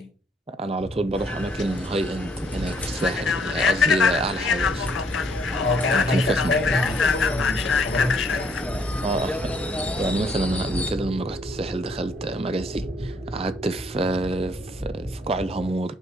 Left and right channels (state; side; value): normal; both; correlation 0.67